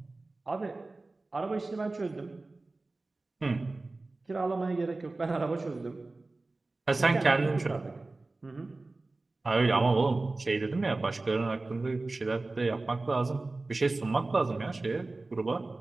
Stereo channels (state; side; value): quieter; left; 3.2 dB